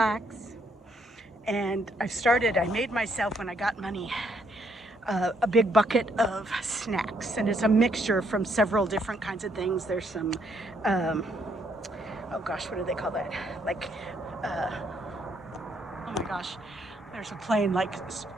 And I made myself, when I got money, a big bucket of snacks, and it's a mixture from several different kinds of things. There's some, oh gosh, what do they call that? Like, oh my gosh, there's a plane, like,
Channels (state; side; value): normal; both; correlation 0.71